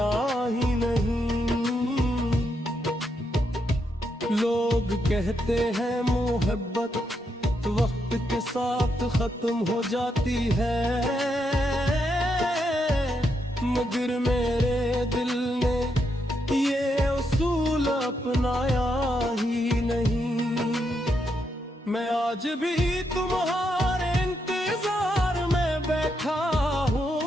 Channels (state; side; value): normal; both; correlation 0.80